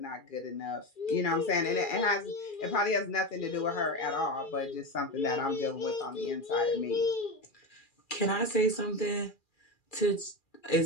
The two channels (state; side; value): late; right; 2.4 ms